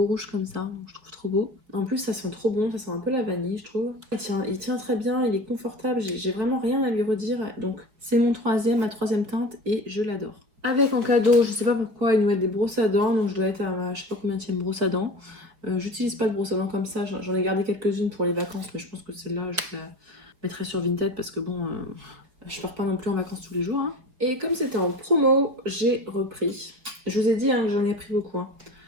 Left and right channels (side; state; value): left; late; 4.6 ms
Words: rouge comme ça. Donc je trouve trop beau. En plus ça sent trop bon, ça sent un peu la vanille je trouve. Il tient très bien, il est confortable. J'ai vraiment rien à lui redire. Donc c'est ma troisième teinte et je l'adore. Avec en cadeau, je sais pas pourquoi, ils nous mettent des brosses à dents. Donc je dois être à ma, je sais pas combien de brosse à dents. J'utilise pas de brosse à dents comme ça. J'en ai gardé quelques-unes pour les vacances. Mais je pense que celle-là je la mettrai sur Vinted parce que bon... je pars pas non plus en vacances tous les jours. Hein. Et comme c'était en promo, j'ai repris. Je vous ai dit hein, que j'en ai pris beaucoup. Hein.